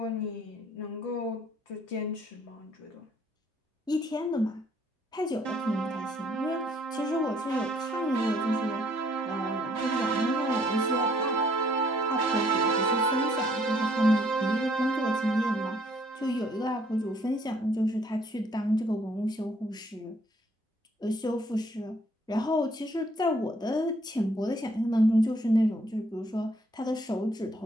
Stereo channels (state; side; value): normal; both; correlation 0.65